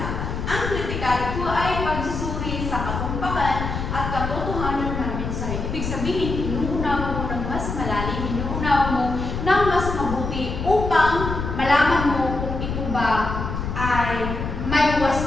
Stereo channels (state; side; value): noise; left; rumble, 4 dB below the sound